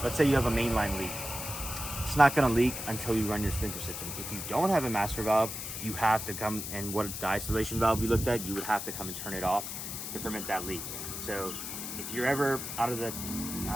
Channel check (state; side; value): noise; left; hiss, 6 dB below the sound